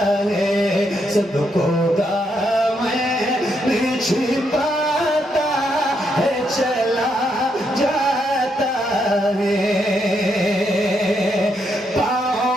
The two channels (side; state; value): both; normal; correlation 0.78